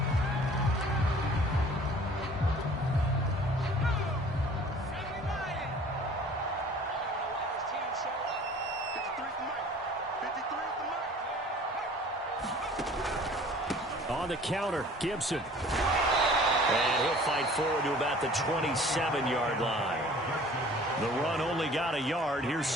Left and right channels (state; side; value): normal; both; correlation 0.49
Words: On the counter, Gibson. And he'll fight forward to about the 27-yard line. The run only got a yard. Here's